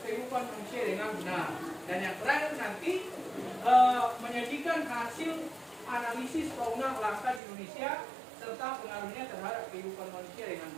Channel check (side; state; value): left; drops out; at 7.4 s